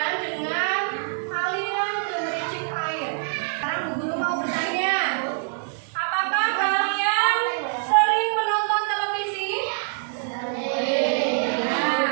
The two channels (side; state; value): left; silent; digital silence